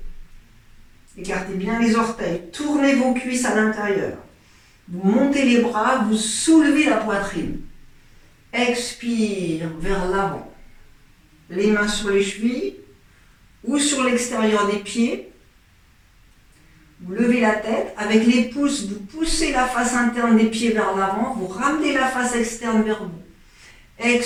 Écartez bien les orteils. Tournez vos cuisses à l'intérieur. Vous montez les bras, vous soulevez la poitrine. Expire vers l'avant. Les mains sur les chevilles ou sur l'extérieur des pieds. Vous levez la tête. Avec les pouces, vous poussez la face interne des pieds vers l'avant. Vous ramenez la face externe vers vous.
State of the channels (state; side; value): identical; both; correlation 1.00